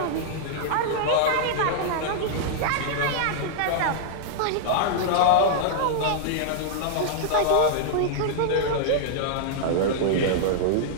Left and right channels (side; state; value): both; different; correlation -0.01